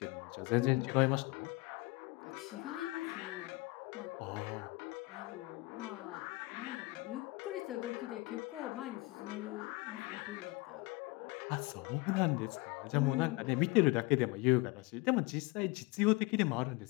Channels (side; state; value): right; quieter; 23.4 dB